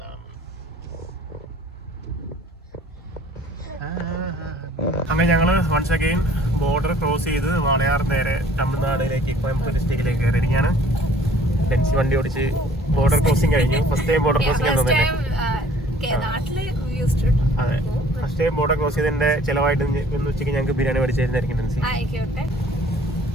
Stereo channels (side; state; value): both; normal; correlation 0.54